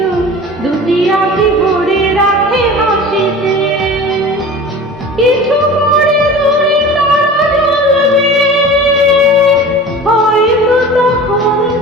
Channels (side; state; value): both; normal; correlation 0.37